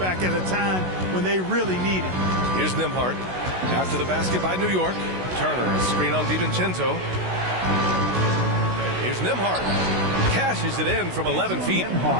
at a time when they really need it. Here's Nembhard. After the basket by New York. Turner, a screen on DiVincenzo. Here's Nembhard. Cashes it in from 11 feet.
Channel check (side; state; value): left; late; 16 ms